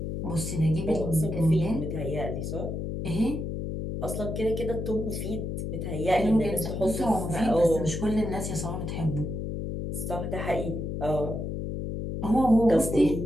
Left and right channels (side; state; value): left; noise; hum, 4 dB below the sound